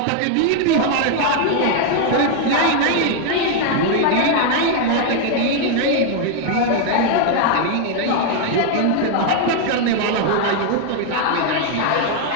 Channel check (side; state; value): both; different; correlation 0.00